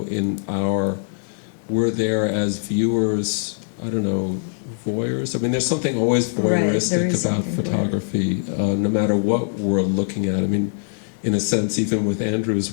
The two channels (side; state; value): right; silent; digital silence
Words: we're there as viewers, I don't know, voyeurs. There's something always voyeuristic about photography, no matter what we're looking at. In a sense, even with